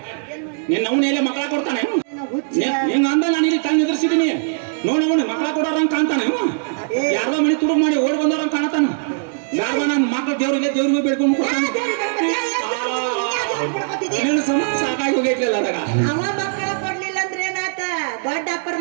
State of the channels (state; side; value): silent; left; digital silence